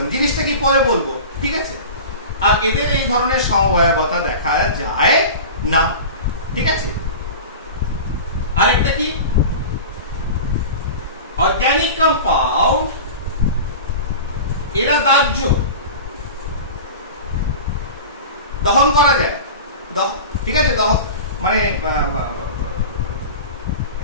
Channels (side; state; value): both; inverted; correlation -0.33